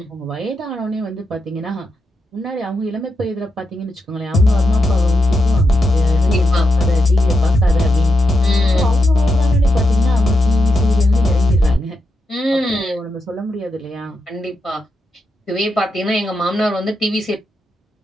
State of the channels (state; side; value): normal; both; correlation 0.85